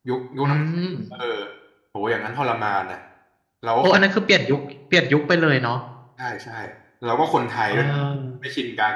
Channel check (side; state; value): both; identical; correlation 1.00